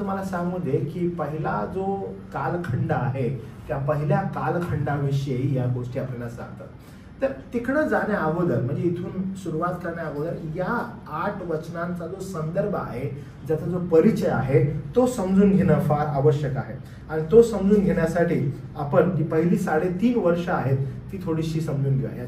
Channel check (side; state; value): both; identical; correlation 1.00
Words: सांगू दे की पहिला जो कालखंड आहे त्या पहिल्या कालखंडाविषयी या गोष्टी आपल्याला सांगतात. तर तिकडं जाण्या अगोदर म्हणजे इथून सुरुवात करण्या अगोदर या 8 वचनांचा जो संदर्भ आहे, ज्याचा जो परिचय आहे तो समजून घेणं फार आवश्यक आहे. आणि तो समजून घेण्यासाठी आपण जी पहिली 3.5 वर्ष आहेत ती थोडीशी समजून घेऊया.